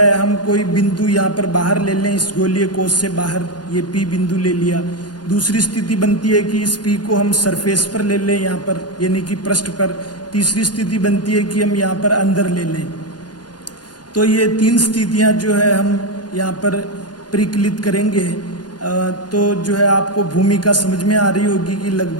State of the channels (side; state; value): right; late; 0.70 ms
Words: हम कोई बिंदु यहाँ पर बाहर ले लें, इस गोलीय कोश से बाहर ये P बिंदु ले लिया। दूसरी स्थिति बनती है कि इस P को हम सरफेस पर ले लें, यहाँ पर यानी कि पृष्ठ पर। तीसरी स्थिति बनती है कि हम यहाँ पर अंदर ले लें। तो ये तीन स्थितियां जो है हम यहाँ पर परिकलित करेंगे। तो जो है आपको भूमिका समझ में आ रही होगी कि